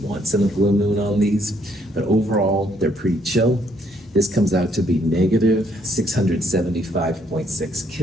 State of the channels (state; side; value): normal; both; correlation 0.69